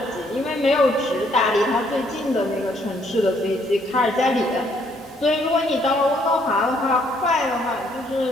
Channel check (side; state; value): both; normal; correlation 0.68